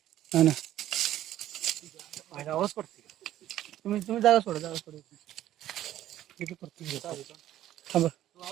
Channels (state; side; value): quieter; left; 12.9 dB